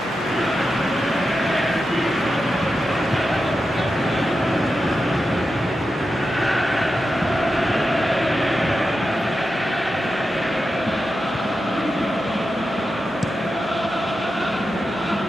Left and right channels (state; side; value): normal; both; correlation 0.90